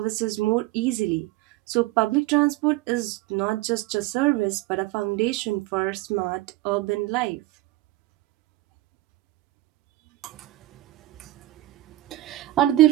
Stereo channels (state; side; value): quieter; left; 17.1 dB